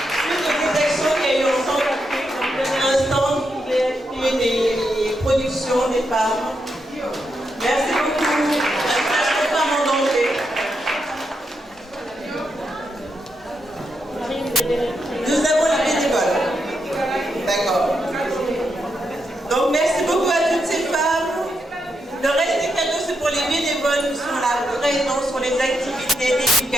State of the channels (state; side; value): normal; both; correlation 0.83